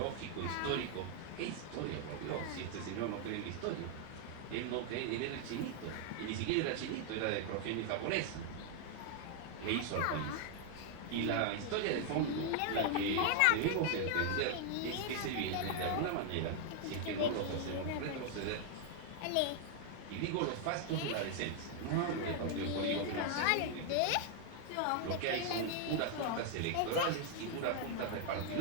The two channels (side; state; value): both; different; correlation 0.00